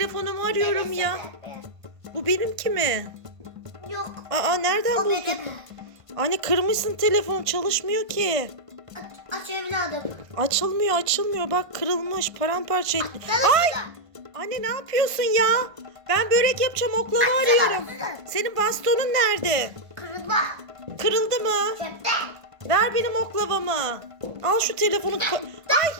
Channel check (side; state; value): left; late; 1.5 ms